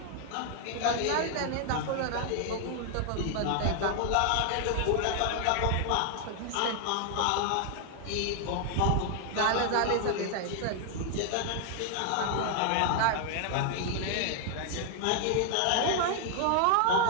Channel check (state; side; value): different; both; correlation 0.00